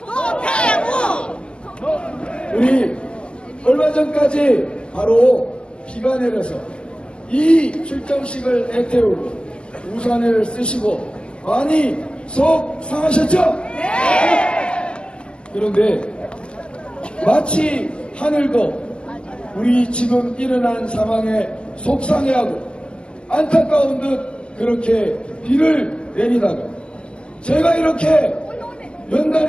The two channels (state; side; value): late; right; 0.050 ms